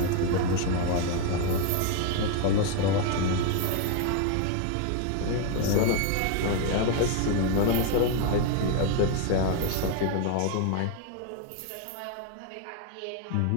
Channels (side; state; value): both; different; correlation 0.01